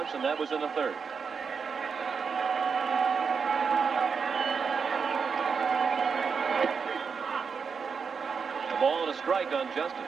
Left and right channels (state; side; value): quieter; left; 5.8 dB